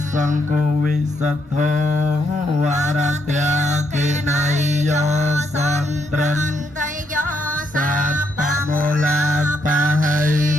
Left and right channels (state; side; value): normal; both; correlation 0.76